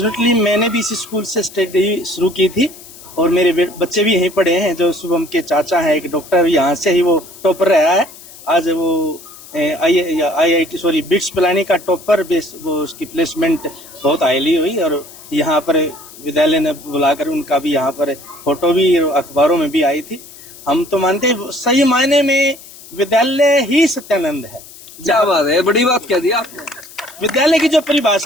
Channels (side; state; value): left; noise; hiss, 19 dB below the sound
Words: मैंने भी इसी स्कूल से स्टडी शुरू की थी, और मेरे बच्चे भी यहीं पढ़े हैं। जो शुभम के चाचा है एक डॉक्टर, यहाँ से ही वो टॉपर रहा है। आज वो IIT बिट्स पिलानी का टॉपर, वो उसकी प्लेसमेंट बहुत हाईली हुई, और यहाँ पर विद्यालय ने बुलाकर उनका भी यहाँ पर फोटो भी अखबारों में भी आई थी। हम तो मानते हैं सही मायने में विद्यालय ही सत्यानंद है। क्या बात है, बड़ी बात कह दी आपने। विद्यालय की जो